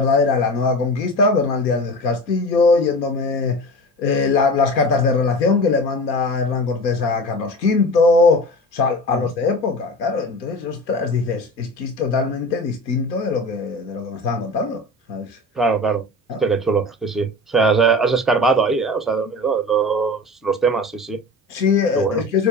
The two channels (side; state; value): both; normal; correlation 0.32